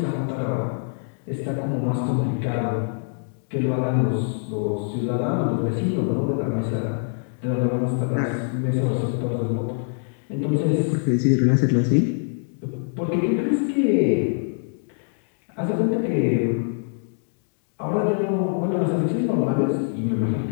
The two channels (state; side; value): silent; right; digital silence